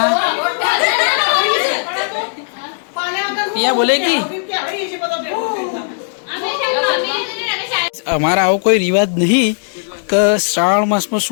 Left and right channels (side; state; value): right; silent; digital silence